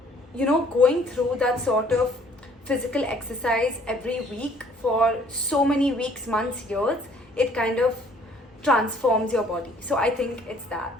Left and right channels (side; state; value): both; normal; correlation 0.59